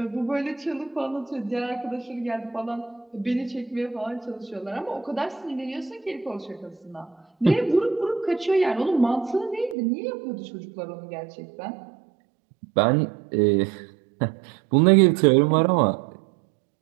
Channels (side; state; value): left; drops out; at 9.8 s